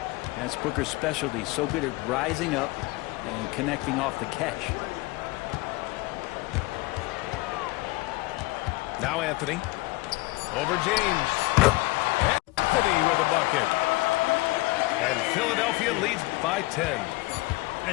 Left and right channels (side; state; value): right; quieter; 22.1 dB